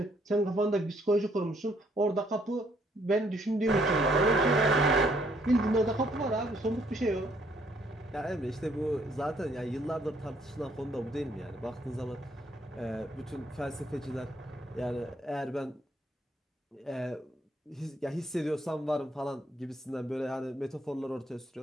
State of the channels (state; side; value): normal; both; correlation 0.68